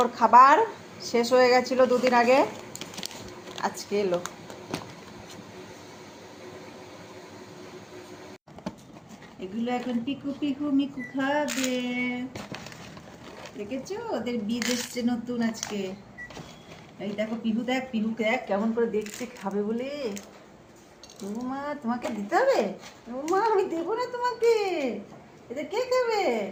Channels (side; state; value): both; identical; correlation 1.00